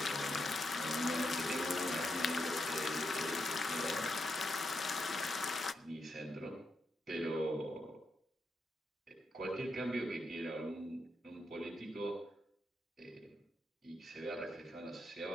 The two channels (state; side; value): normal; both; correlation 0.83